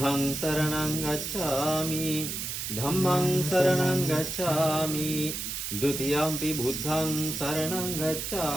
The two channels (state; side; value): noise; right; hiss, 4 dB below the sound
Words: සරණං ගච්ඡාමි ධම්මං සරණං ගච්ඡාමි ဒုတိယံ පි බුද්ධං සරණං